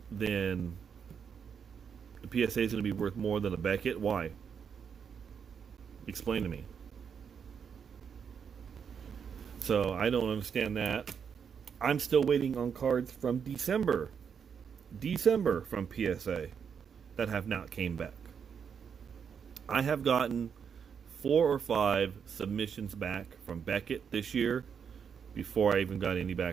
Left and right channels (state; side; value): quieter; left; 7.0 dB